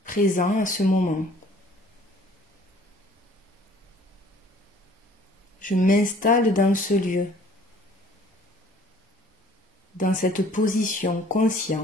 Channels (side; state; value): both; normal; correlation 0.54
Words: Présent à ce moment. Je m'installe dans ce lieu, dans cette position